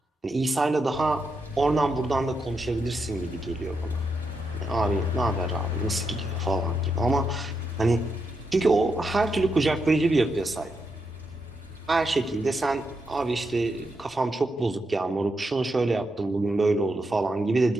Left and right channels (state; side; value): normal; both; correlation 0.83